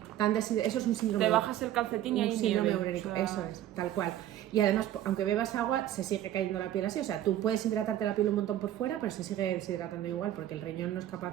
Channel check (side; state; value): left; quieter; 12.5 dB